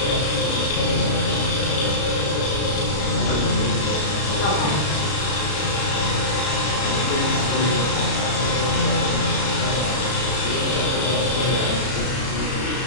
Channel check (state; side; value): late; right; 33 ms